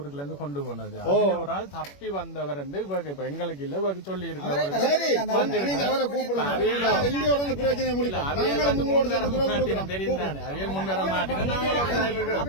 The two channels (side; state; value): right; late; 21 ms